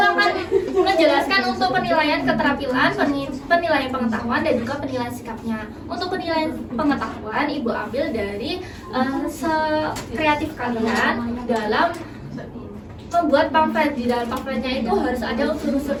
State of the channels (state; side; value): identical; both; correlation 1.00